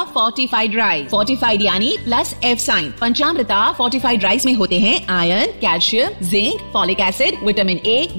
fortified rice. फोर्टिफाइड यानी plus F sign. Panchamrita fortified rice में होते हैं iron, calcium, zinc, folic acid, vitamin A,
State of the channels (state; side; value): inverted; both; correlation -1.00